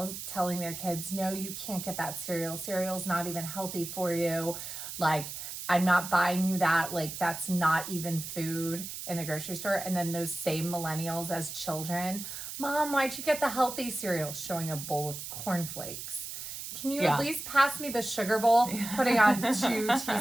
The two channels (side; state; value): right; noise; hiss, 8 dB below the sound